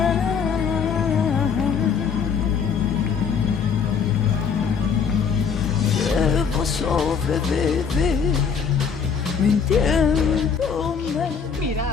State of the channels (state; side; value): quieter; right; 6.3 dB